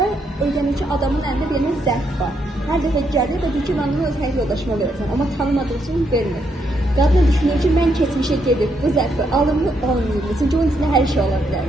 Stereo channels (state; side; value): normal; both; correlation 0.77